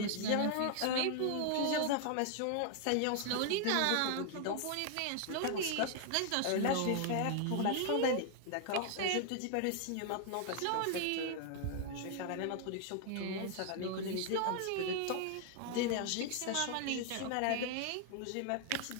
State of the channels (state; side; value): different; both; correlation 0.00